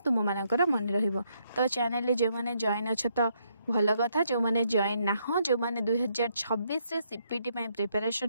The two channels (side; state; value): both; inverted; correlation -0.74